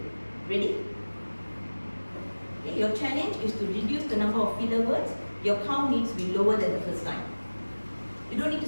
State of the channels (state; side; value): inverted; both; correlation -1.00